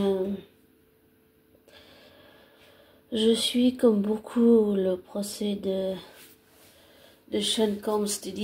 Je suis comme beaucoup le procès de Sean Combs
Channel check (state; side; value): identical; both; correlation 1.00